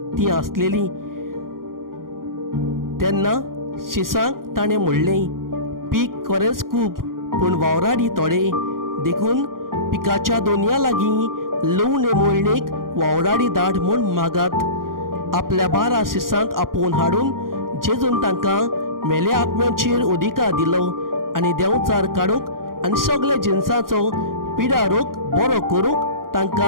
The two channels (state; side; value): late; left; 0.91 ms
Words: ती आसलेली. तेन्ना शिसांक ताणें म्हणलें, पीक खरेंच खूब पूण वावराडी थोडे, देखून पिकाच्या दोनया लागीं लवणे मोळणेक वावराडी धाड म्हूण मागात. आपल्या 12 शिसांक आपोवन हाडून जेजून तांकां मेल्या आत्म्याचेर अधिकार दिलो आनी देंवचार काडूंक आनी सगळे जिन्साचो पिडा रोग बरो करूंक